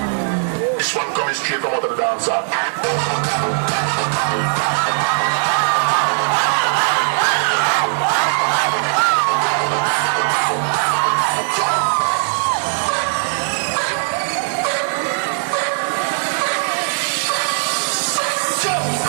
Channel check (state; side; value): silent; left; 67 dB below the other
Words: This one coming straight from out of the dance hall.